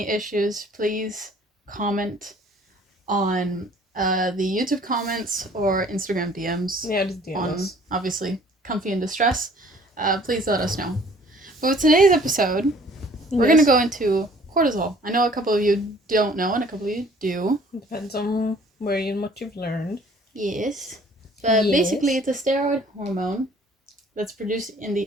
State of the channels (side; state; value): both; normal; correlation 0.55